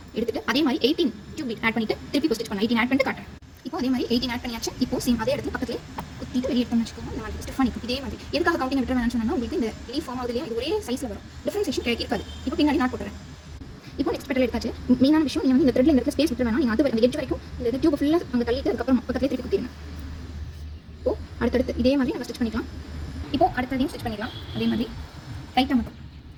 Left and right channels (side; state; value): both; identical; correlation 1.00